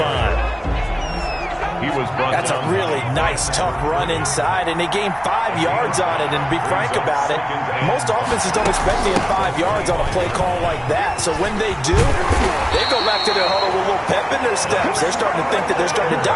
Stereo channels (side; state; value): both; identical; correlation 1.00